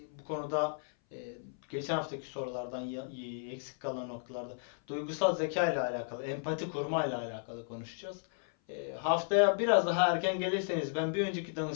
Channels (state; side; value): silent; right; 55 dB below the other